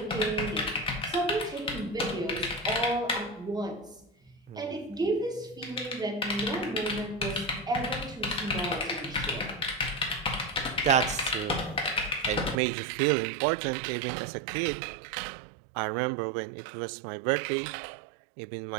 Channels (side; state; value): left; drops out; at 12.6 s